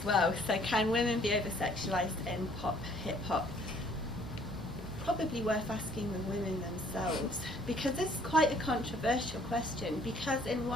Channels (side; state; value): both; normal; correlation 0.60